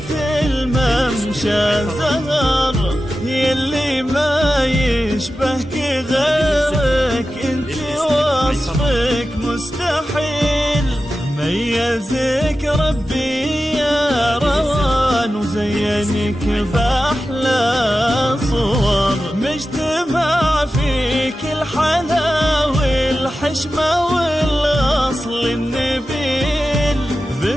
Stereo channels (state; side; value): normal; both; correlation 0.93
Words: ممشى زهر. يلي ما يشبهك غيرك انت وصفك مستحيل. ميزك ربي يا روان وزينك بأحلى صور. مجتمع فيك الحلا والحشمة والأصل النبيل.